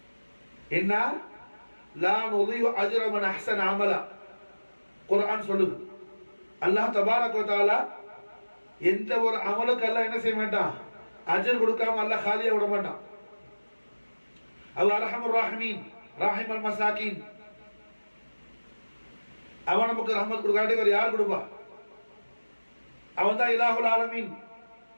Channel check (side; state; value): both; inverted; correlation -1.00